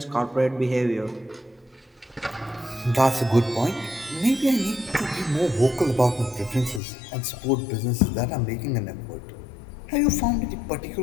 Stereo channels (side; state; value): right; drops out; at 6.8 s